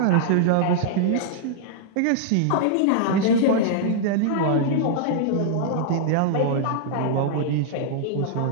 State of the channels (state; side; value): different; both; correlation -0.01